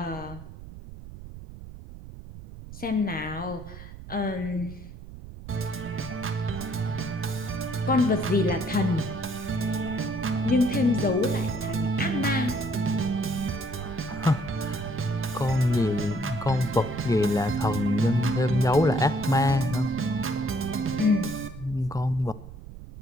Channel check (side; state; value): right; noise; rumble, 14 dB below the sound